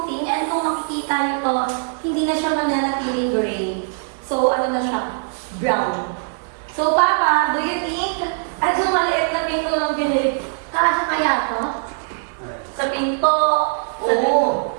And kung makikita niyo to, hindi na siya mananatiling gray. So, ano na siya? Brown. So, Papa, do you think, yung maliit na pintura ng binili, kasya kaya to? Sa pinto? Oo.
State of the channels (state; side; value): silent; left; 65 dB below the other